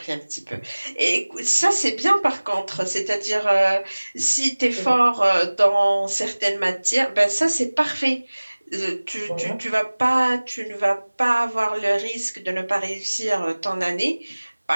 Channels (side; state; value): both; inverted; correlation -1.00